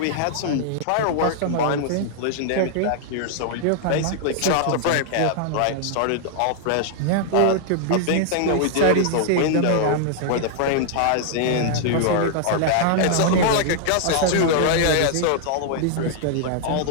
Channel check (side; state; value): both; different; correlation -0.01